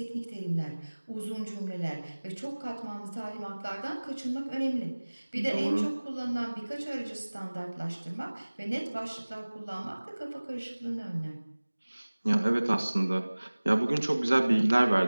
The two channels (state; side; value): inverted; both; correlation -1.00